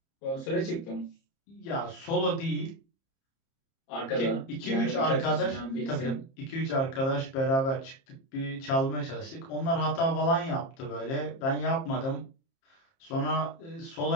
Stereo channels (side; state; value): right; late; 30 ms